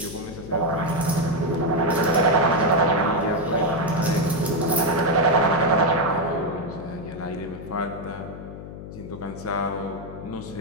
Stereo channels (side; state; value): left; noise; hum, 12 dB below the sound